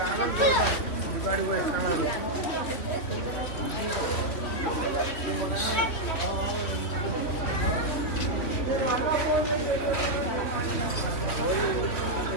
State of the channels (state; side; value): late; right; 3.0 ms